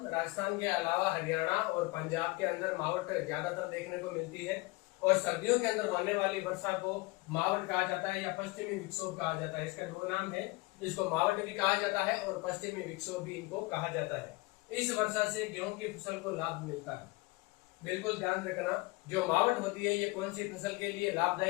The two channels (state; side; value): quieter; right; 23.7 dB